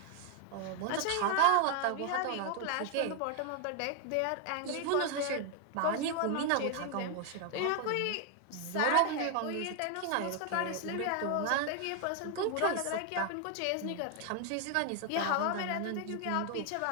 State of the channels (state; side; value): different; both; correlation 0.01